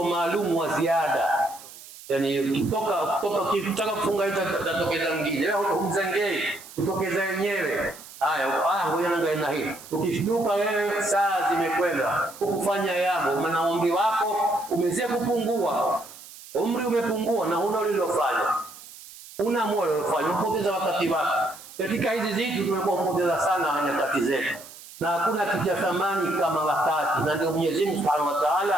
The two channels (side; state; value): right; noise; hiss, 17 dB below the sound